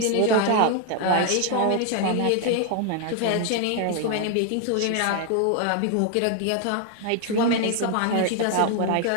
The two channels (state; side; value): different; both; correlation 0.00